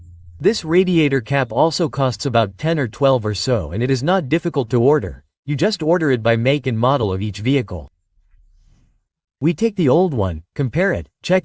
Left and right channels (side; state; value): both; identical; correlation 1.00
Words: This radiator cap also costs about 10 or 12 or so, and it is not difficult to order. You just order it by make and model of each vehicle. We take the old one, compare it,